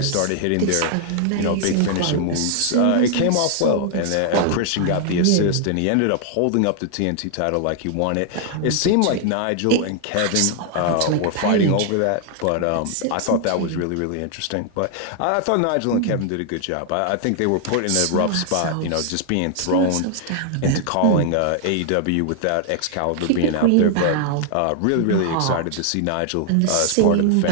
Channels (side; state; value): both; different; correlation 0.00